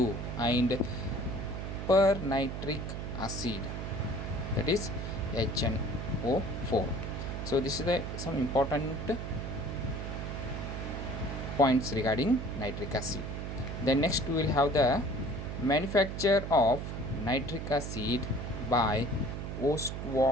and pernitric acid, that is HNO4. So this is some important points regarding nitric acid. Then next we will have the manufacture of nitric acid by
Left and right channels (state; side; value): noise; right; hum, 5 dB below the sound